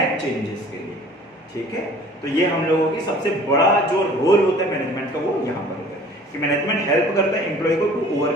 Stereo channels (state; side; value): normal; both; correlation 0.49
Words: चेंजेस के लिए। ठीक है, तो ये हम लोगों की सबसे बड़ा जो रोल होता है मैनेजमेंट का वो यहाँ पर होता है कि मैनेजमेंट हेल्प करता है एम्प्लॉय को to